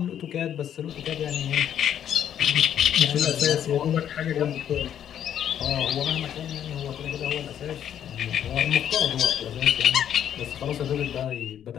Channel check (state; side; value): quieter; right; 9.8 dB